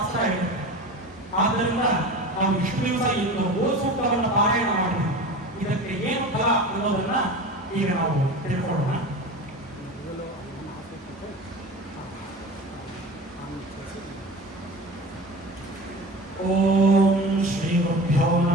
ಹೇಳಿದೆ. ಆದ್ದರಿಂದ ನಾವು ಇಷ್ಟು ದಿವಸ ಇಂದು ಗೋ ಸೂಕ್ತವನ್ನು ಪಾರಾಯಣ ಮಾಡಿದ್ವಿ. ಇದಕ್ಕೆ ಏನು ಫಲ ಅನ್ನೋದನ್ನ ಈಗ ನಾವು ತಿಳ್ಕೊಳ್ಳೋಣ. ಓಂ ಶ್ರೀ ಗುರುಭ್ಯೋ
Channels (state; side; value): normal; both; correlation 0.33